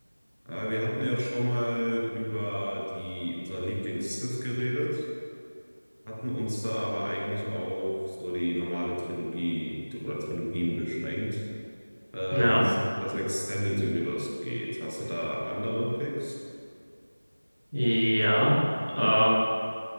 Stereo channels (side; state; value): both; inverted; correlation -1.00